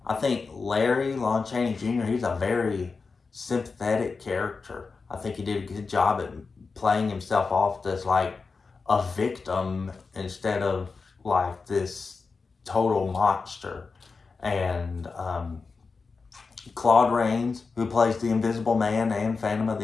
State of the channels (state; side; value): quieter; right; 4.5 dB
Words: Larry, Lon Chaney Jr., he's a very sympathetic character. I think he did a good job at playing himself off as like a victim instead of like this total monster. And Claude Rains, who plays the Invisible Man and Phantom of